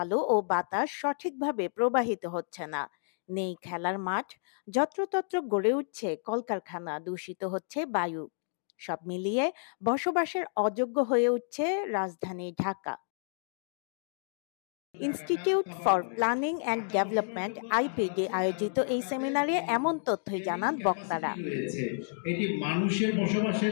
আলো ও বাতাস সঠিকভাবে প্রবাহিত হচ্ছে না। নেই খেলার মাঠ। যত্রতত্র গড়ে উঠছে কলকারখানা, দূষিত হচ্ছে বায়ু। সব মিলিয়ে বসবাসের অযোগ্য হয়ে উঠছে রাজধানী Dhaka. Institute for planning and development IPD আয়োজিত এই সেমিনারে এমন তথ্যই জানান বক্তারা। এটি মানুষের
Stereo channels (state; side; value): silent; right; digital silence